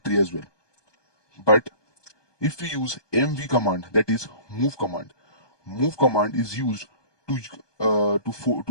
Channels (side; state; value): right; late; 1.2 ms